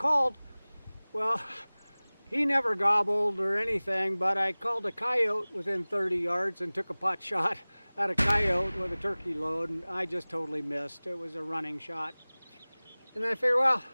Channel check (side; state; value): both; inverted; correlation -1.00